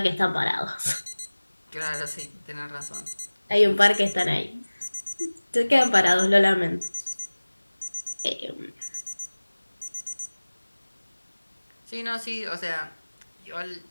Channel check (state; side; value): inverted; both; correlation -1.00